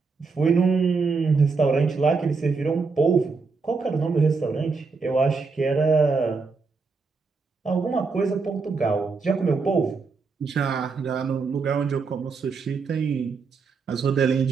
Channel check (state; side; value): quieter; left; 4.6 dB